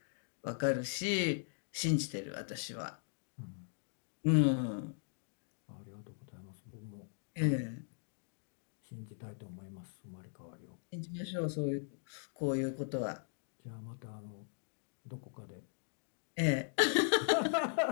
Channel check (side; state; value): right; silent; digital silence